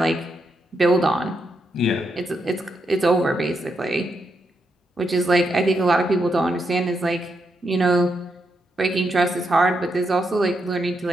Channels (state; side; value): normal; both; correlation 0.82